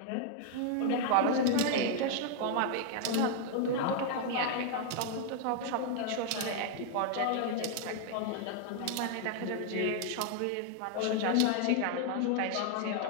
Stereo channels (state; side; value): different; both; correlation 0.00